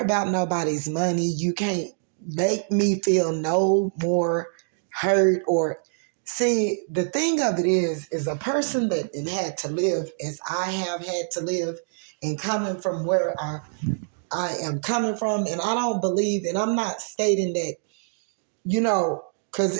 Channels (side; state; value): left; silent; digital silence